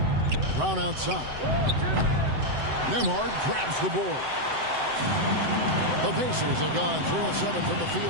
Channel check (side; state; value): left; late; 7.8 ms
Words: Brown outside. Nembhard grabs the board. The Pacers have gone 3 of 7 from the